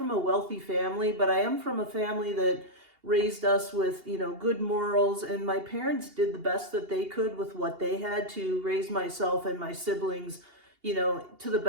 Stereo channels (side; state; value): left; late; 2.8 ms